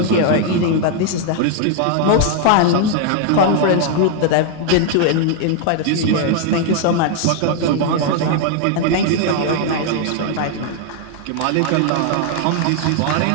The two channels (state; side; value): different; both; correlation 0.00